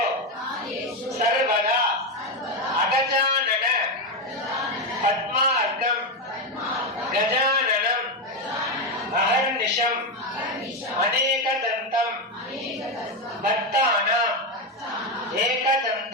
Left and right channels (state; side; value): normal; both; correlation 0.09